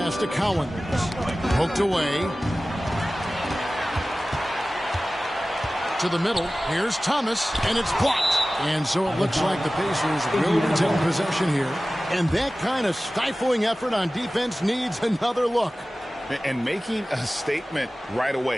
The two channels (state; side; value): normal; both; correlation 0.97